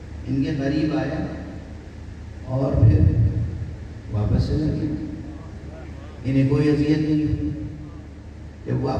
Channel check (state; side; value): identical; both; correlation 1.00